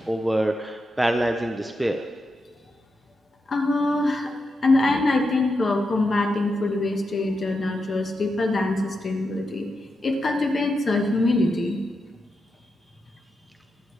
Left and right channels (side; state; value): both; normal; correlation 0.87